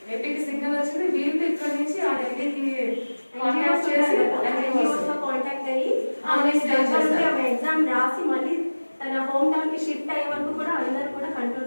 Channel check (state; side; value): inverted; both; correlation -1.00